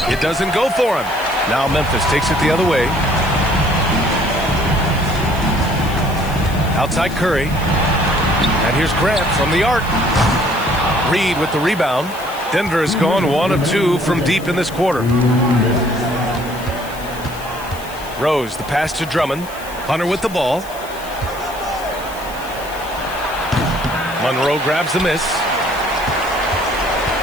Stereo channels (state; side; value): noise; left; hiss, 17 dB below the sound